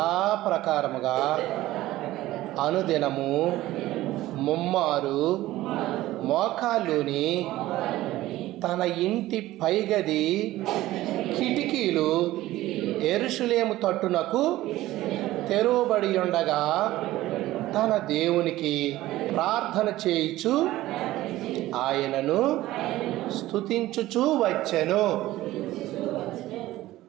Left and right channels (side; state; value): left; quieter; 16.1 dB